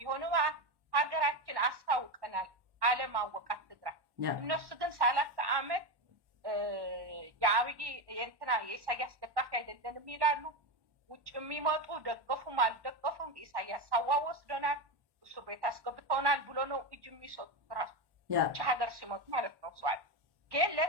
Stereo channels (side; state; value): left; late; 1.1 ms